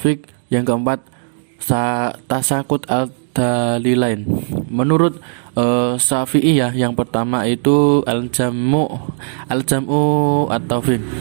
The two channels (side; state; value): left; silent; digital silence